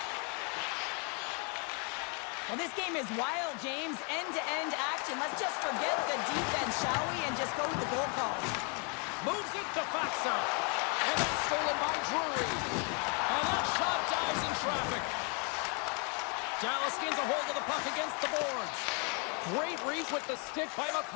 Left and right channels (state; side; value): quieter; right; 35.8 dB